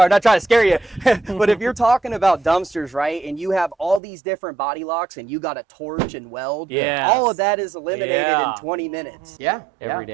I'm not trying to scare you, but if you're talking about dumpsters, right, and you have all these different body locks and you got to torch and weld, all of that is eliminated in 20 minutes. Yeah. Every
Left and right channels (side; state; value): left; drops out; at 4.0 s